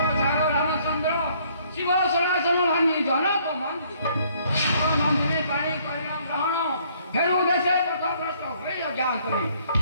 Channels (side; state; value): both; inverted; correlation -0.64